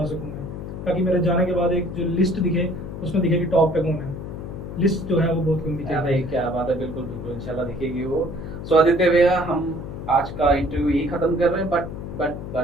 सकूँ मैं, ताकि मेरे जाने के बाद एक जो लिस्ट दिखे, उसमें दिखे कि टॉप पे कौन है। लिस्ट जो है वो बहुत लंबी क्या चल भाई क्या बात है, बिल्कुल बिल्कुल इंशाल्लाह दिखेगी वो। सो आदित्य भैया हम आज का इंटरव्यू यही खत्म कर रहे हैं, बट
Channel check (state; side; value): noise; left; hum, 8 dB below the sound